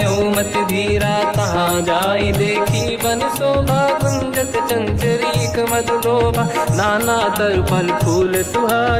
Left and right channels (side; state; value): both; identical; correlation 1.00